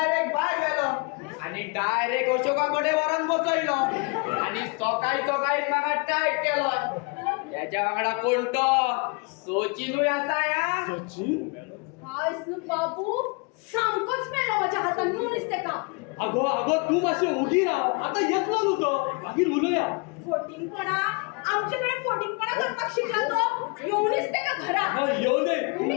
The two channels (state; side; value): quieter; right; 31.3 dB